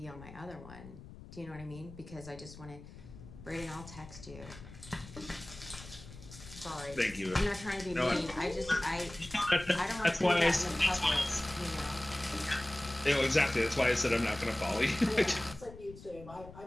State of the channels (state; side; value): noise; left; rumble, 16 dB below the sound